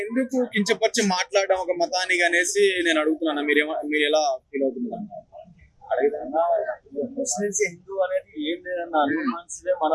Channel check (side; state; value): both; identical; correlation 1.00